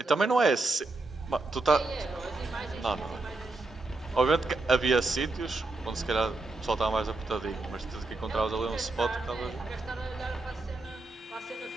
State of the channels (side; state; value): left; quieter; 3.1 dB